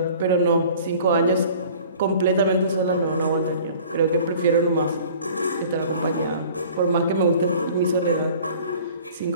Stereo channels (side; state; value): both; inverted; correlation -0.48